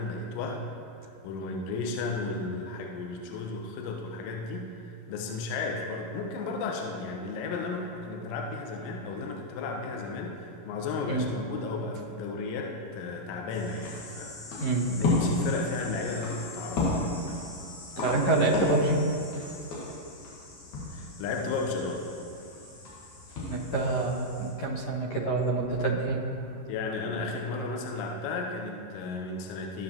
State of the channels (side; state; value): right; late; 11 ms